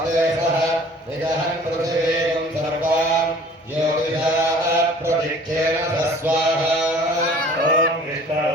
सः निजहन् पृथिवीं सर्वां ज्योतिषाः प्रदिक्षेण स्वाहा ॐ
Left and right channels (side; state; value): both; normal; correlation 0.49